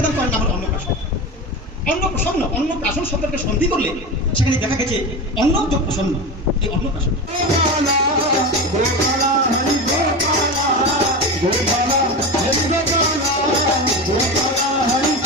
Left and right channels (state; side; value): normal; both; correlation 0.24